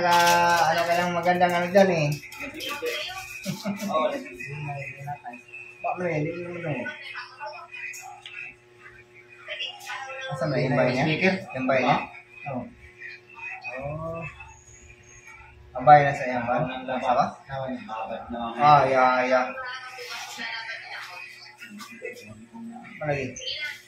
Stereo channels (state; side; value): identical; both; correlation 1.00